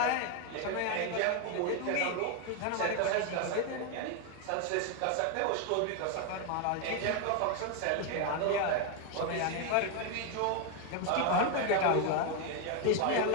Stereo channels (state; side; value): different; both; correlation 0.01